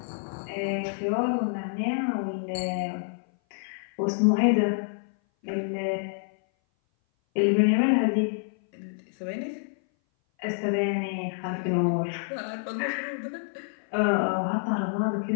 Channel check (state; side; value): silent; right; 57 dB below the other